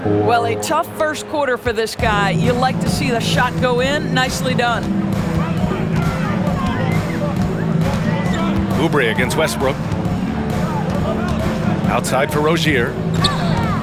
Well, a tough first quarter for this guy. You like to see the shot go in. Nicely done. Oubre against Westbrook. Outside for Rozier.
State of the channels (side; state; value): both; identical; correlation 1.00